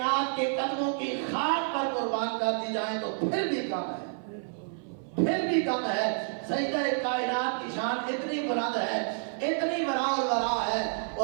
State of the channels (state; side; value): silent; left; 58 dB below the other